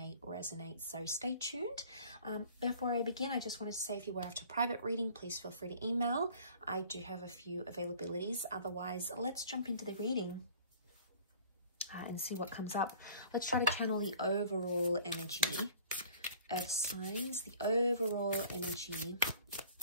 resonate, so stay tuned. Before I begin, I just wanted to say if you were after private reading, please feel free to email. I do have a few availabilities. Otherwise, let's jump into the reading and see what comes up. Let's try to channel the overall energy, Earth signs, the overall energy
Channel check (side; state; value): both; inverted; correlation -0.49